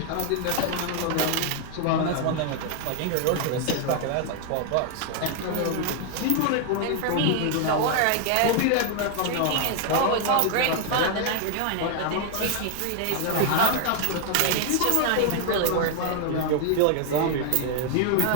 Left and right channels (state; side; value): different; both; correlation 0.00